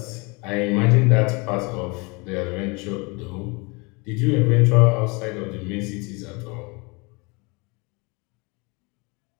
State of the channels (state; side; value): quieter; right; 28.6 dB